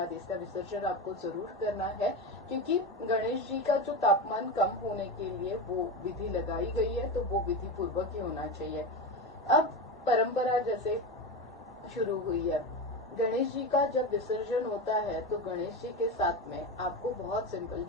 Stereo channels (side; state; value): both; normal; correlation 0.20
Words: इसका विसर्जन आपको जरूर करना है, क्योंकि गणेश जी का जो तापमान कम होने के लिए वो विधि लगाई गई है, तो वो विधि पूर्वक ही होना चाहिए। अब परंपरा जैसे शुरू हुई है, गणेश जी का जब विसर्जन होता है तो गणेश जी के साथ में आपको बहुत सिंपल,